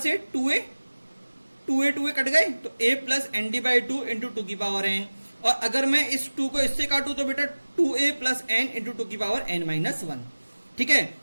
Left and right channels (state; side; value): inverted; both; correlation -1.00